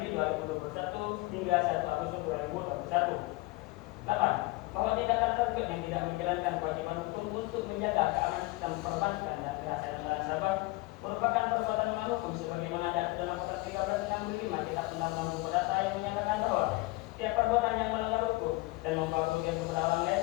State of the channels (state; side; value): quieter; right; 21.7 dB